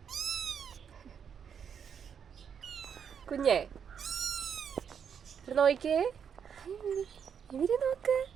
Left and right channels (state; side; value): quieter; left; 7.5 dB